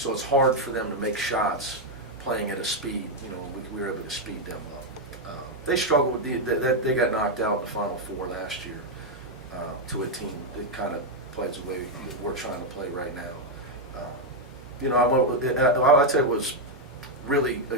it's hard for them to make shots playing at a speed. We were able to speed them up. They struggled with they got knocked out in the Final Four last year to a team that kind of plays the way we're trying to play right now. I'll tell you, was really a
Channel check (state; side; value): normal; both; correlation 0.01